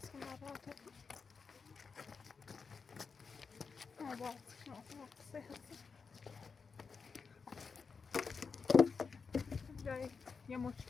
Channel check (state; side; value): quieter; right; 5.2 dB